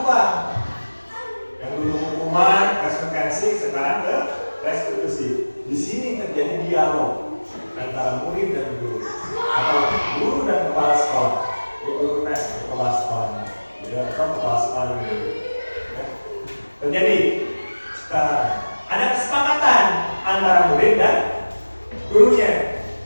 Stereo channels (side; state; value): both; inverted; correlation -1.00